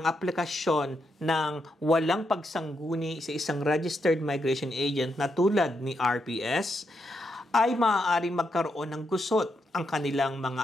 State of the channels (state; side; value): normal; both; correlation 0.81